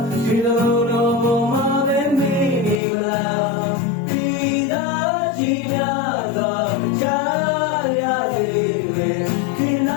ဒီလိုတော့ဘုံမှာပဲမီနေမလားဒီသာကြီးနာတော့ကြားရစေပဲဒီန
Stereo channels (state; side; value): drops out; right; at 2.8 s